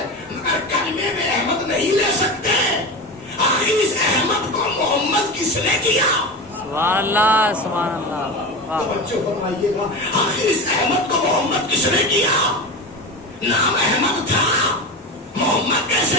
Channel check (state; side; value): normal; both; correlation 0.25